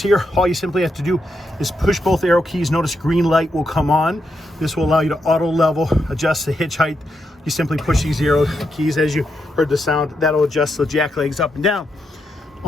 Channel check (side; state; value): both; normal; correlation 0.82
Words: all you simply have to do is push both arrow keys. Notice green light will come on. This will allow you to auto level, adjust the hitch height. You simply push these arrow keys. As you heard the sound, that'll adjust the jack legs up and down.